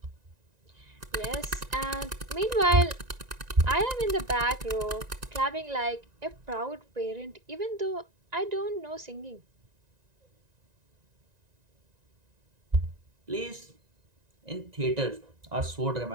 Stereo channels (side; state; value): left; late; 1.9 ms